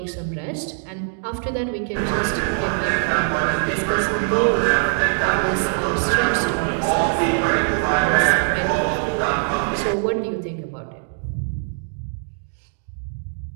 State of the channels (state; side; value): silent; left; digital silence